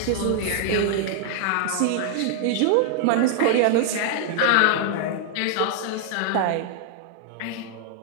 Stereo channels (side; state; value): both; different; correlation 0.00